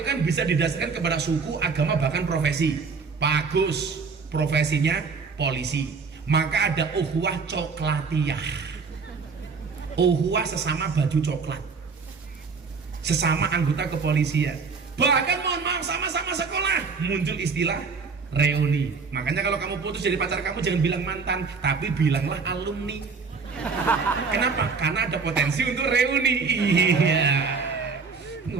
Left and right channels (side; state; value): left; quieter; 5.0 dB